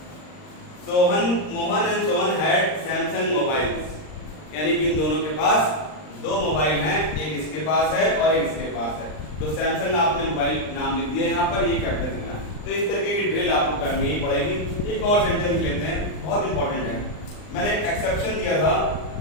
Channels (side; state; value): right; late; 39 ms